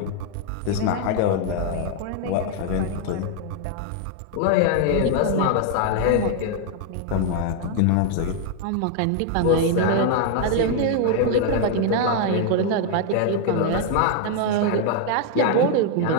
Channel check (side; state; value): both; different; correlation 0.00